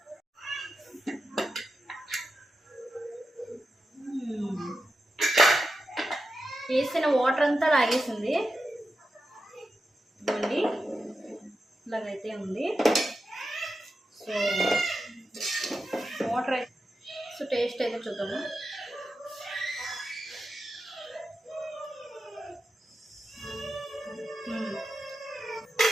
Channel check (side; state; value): both; normal; correlation 0.90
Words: వేసిన వాటర్ అంతా లాగేసింది, ఇవ్వండి ఇలాగైతే ఉంది. సో వాటర్ అయితే టేస్ట్ అయితే చూద్దాము.